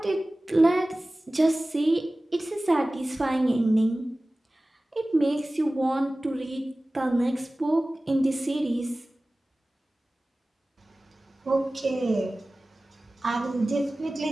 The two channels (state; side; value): normal; both; correlation 0.97